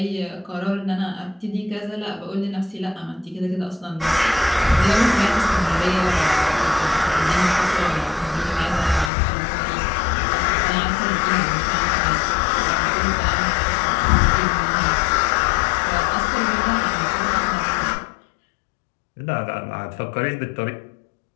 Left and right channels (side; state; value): right; drops out; at 9.1 s